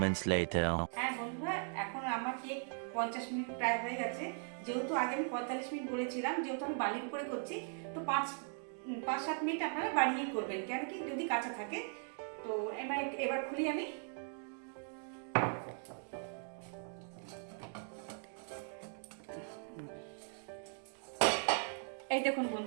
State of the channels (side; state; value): left; silent; 52 dB below the other